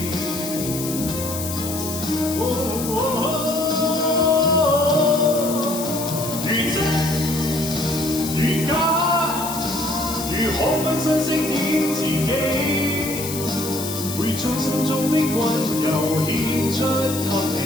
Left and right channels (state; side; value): noise; left; hiss, 7 dB below the sound